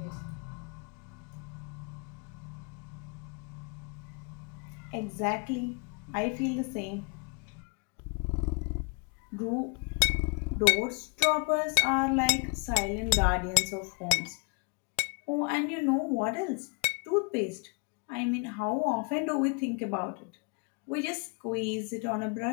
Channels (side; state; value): right; quieter; 34.3 dB